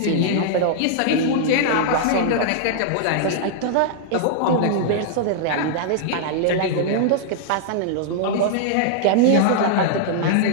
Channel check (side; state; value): both; different; correlation -0.01